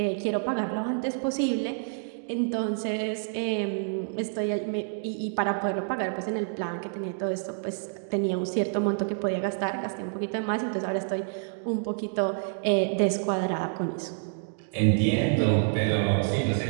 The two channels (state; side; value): silent; left; digital silence